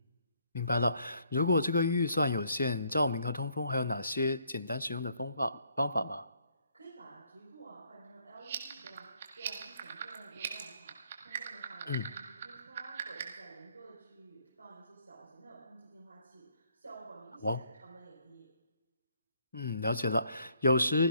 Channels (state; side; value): inverted; both; correlation -0.68